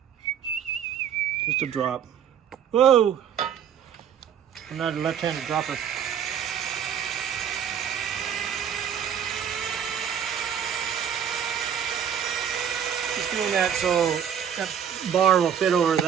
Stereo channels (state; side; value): quieter; left; 8.6 dB